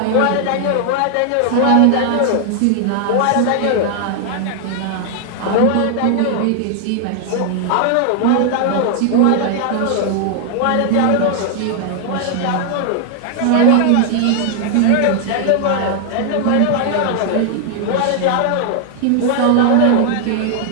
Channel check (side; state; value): both; different; correlation 0.00